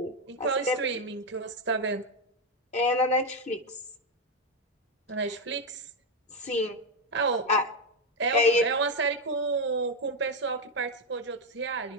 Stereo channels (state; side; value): normal; both; correlation 0.07